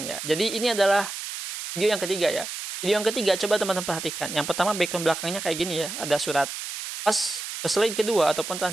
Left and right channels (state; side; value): noise; right; hiss, 7 dB below the sound